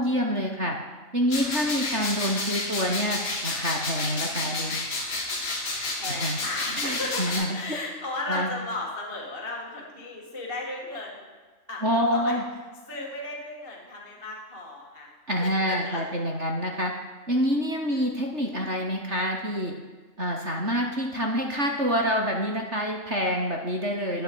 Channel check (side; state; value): left; late; 3.0 ms